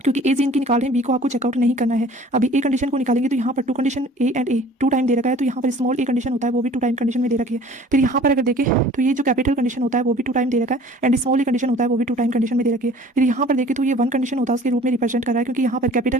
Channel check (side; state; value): both; normal; correlation 0.49